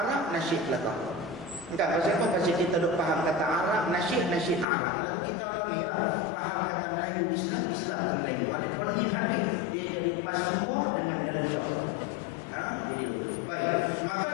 nasyid belakang. Entah pasal apa, pasal kita duk faham kata Arab, nasyid Arab. Lagu kita lah ni lah, faham kata Melayu Islam tu Melayu. Ada penin habis, dia jadi paspor dengan dancah. Jadi lagu tu. Baik, maka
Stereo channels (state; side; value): drops out; right; at 4.7 s